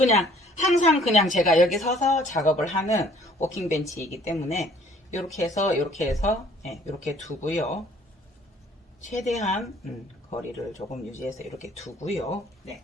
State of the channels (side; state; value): both; normal; correlation 0.57